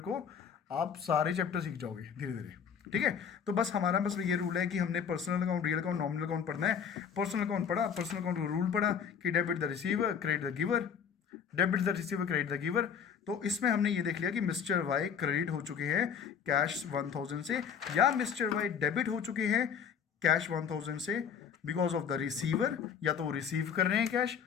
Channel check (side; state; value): right; quieter; 7.4 dB